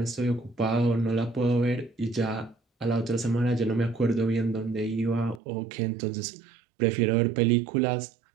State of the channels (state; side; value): drops out; left; at 5.4 s